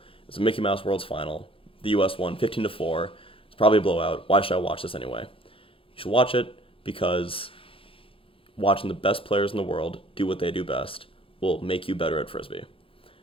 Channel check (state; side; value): late; right; 0.26 ms